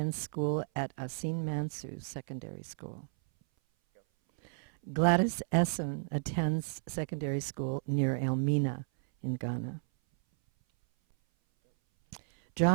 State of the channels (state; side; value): silent; left; 56 dB below the other